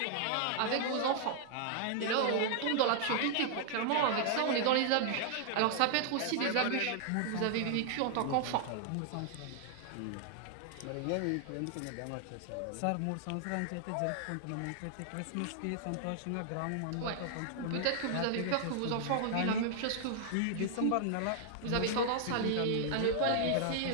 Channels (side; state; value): both; different; correlation -0.01